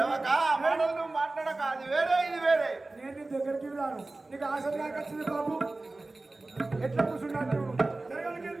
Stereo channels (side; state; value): left; quieter; 3.1 dB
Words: మాట్లాడక అది వేరే ఇది వేరే. నేను నీ దగ్గరికి రాను. నీకు ఆశ నాకు వచ్చింది బాబు. ఎట్లా కూర్చున్నాను